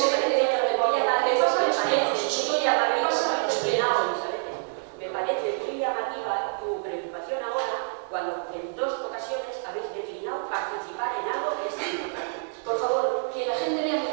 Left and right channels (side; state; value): left; silent; digital silence